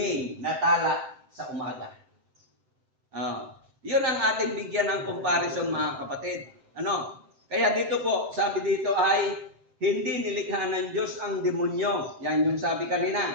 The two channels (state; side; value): late; left; 7.7 ms